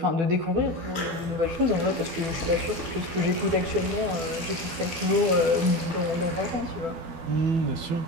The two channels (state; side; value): late; left; 12 ms